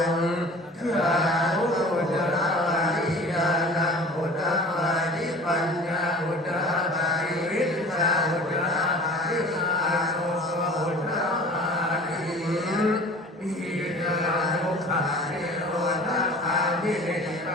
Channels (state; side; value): normal; both; correlation 0.43